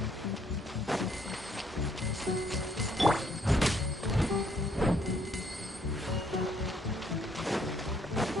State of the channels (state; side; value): normal; both; correlation 0.68